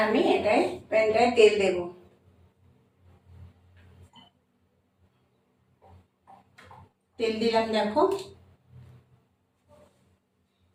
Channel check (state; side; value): identical; both; correlation 1.00